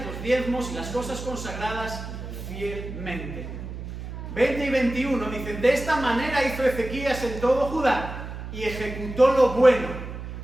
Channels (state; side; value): noise; right; hum, 9 dB below the sound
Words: los diezmos y las cosas consagradas fielmente. 20 y 21 dicen: de esta manera hizo Ezequías en todo Judá, y ejecutó lo bueno,